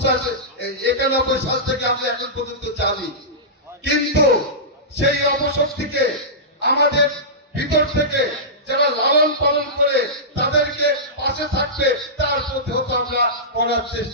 সাল থেকে আমরা এখন পর্যন্ত জানি। কিন্তু সেই অপশক্তিকে আমাদের ভিতর থেকে যারা লালন পালন করে তাদেরকে পাশে থাকবে, তার প্রতি আমরা করার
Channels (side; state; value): both; normal; correlation -0.17